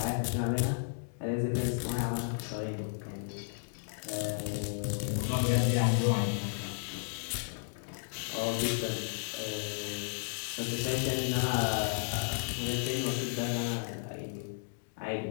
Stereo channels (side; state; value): right; silent; digital silence